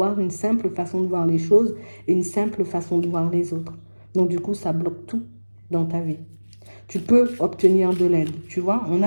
une simple façon de voir les choses et une simple façon de voir les autres. Donc, du coup, ça bloque tout dans ta vie. tu peux obtenir de l'aide, tu vois. On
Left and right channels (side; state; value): both; inverted; correlation -1.00